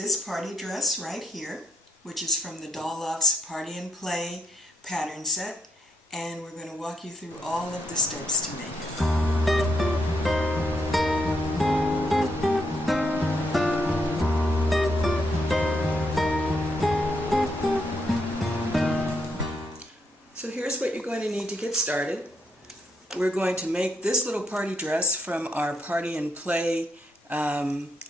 party dress right here, which is from the Doll Loft's Party and Play pattern set, and we're going to walk you through all of the steps to make it. So here's what you're going to need to get started. We're going to make this little party dress from our Party and Play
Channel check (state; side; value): normal; both; correlation 0.78